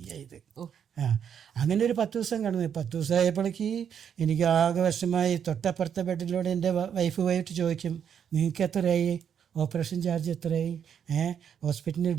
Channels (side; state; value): left; quieter; 8.2 dB